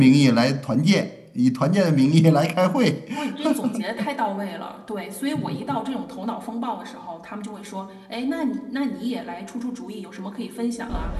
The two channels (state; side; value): identical; both; correlation 1.00